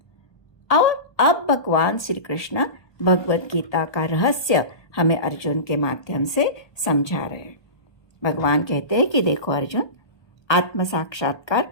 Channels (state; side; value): late; right; 1.3 ms